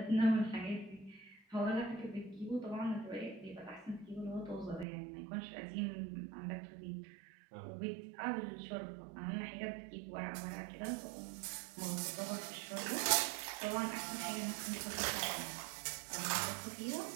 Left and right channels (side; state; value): left; drops out; at 4.9 s